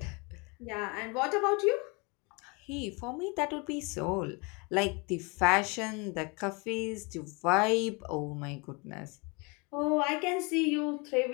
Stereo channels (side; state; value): right; quieter; 29.7 dB